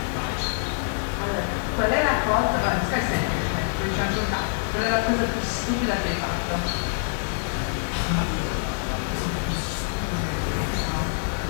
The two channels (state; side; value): silent; right; digital silence